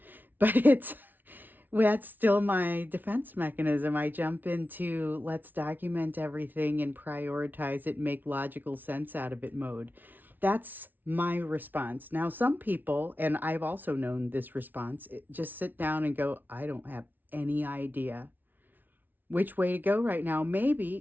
but that's still my defense mechanism. I jump into let's document everything and prioritize it, make logical sense out of it mode. That's my response. Now, some people, and I've also known this response, just sit down and go, I don't have any idea which way to go right now. Maybe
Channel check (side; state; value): left; late; 0.086 ms